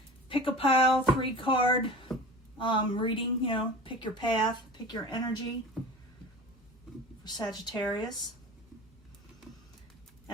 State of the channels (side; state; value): both; normal; correlation 0.37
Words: pick-a-pile 3-card reading, you know, pick your path, pick your energy for Sagittarius